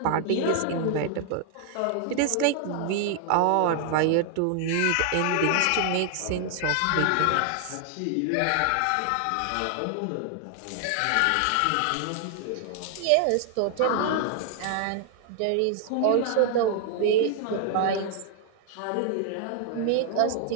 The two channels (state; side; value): different; both; correlation 0.00